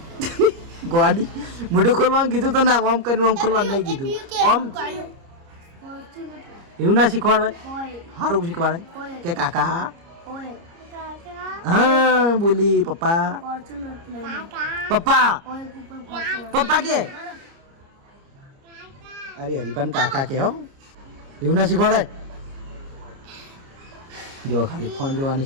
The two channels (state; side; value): late; left; 30 ms